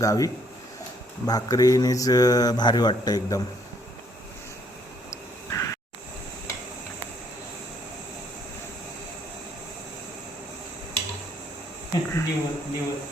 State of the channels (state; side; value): normal; both; correlation 0.67